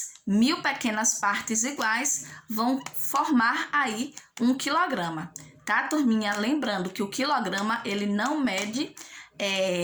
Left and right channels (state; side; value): identical; both; correlation 1.00